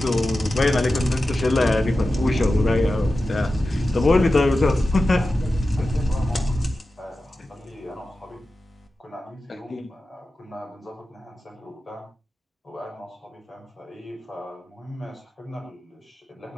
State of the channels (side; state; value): both; normal; correlation 0.93